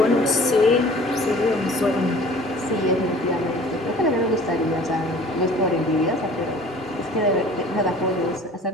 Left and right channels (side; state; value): both; normal; correlation 0.48